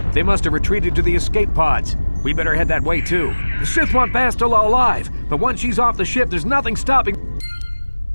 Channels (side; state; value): both; inverted; correlation -1.00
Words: They must have retreated to the escape pods. We better head that way too. The Sith want Bastel alive, but once she's off the ship, there's nothing stopping...